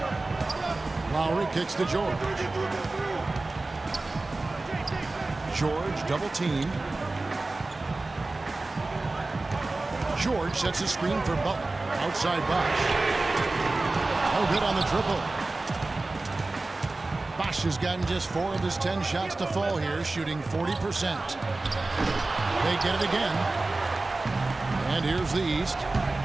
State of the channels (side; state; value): left; quieter; 3.2 dB